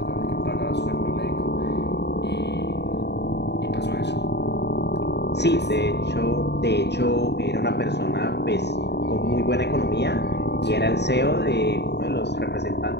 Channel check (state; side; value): late; right; 0.50 ms